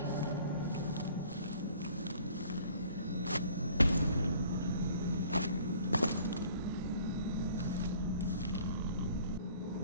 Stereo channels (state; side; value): inverted; both; correlation -0.54